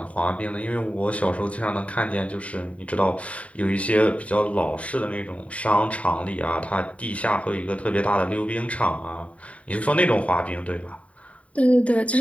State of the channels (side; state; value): right; late; 0.066 ms